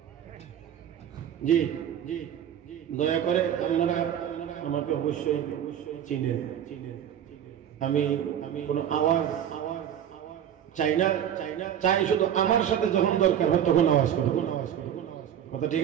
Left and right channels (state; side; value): quieter; left; 9.8 dB